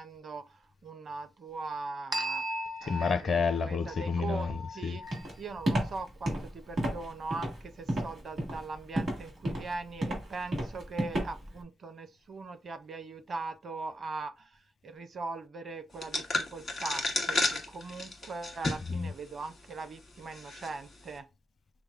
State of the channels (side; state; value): both; normal; correlation 0.83